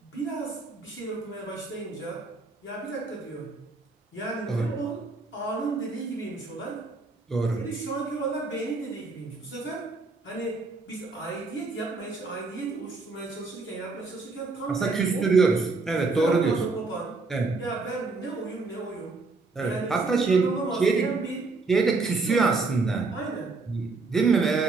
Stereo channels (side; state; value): left; quieter; 3.9 dB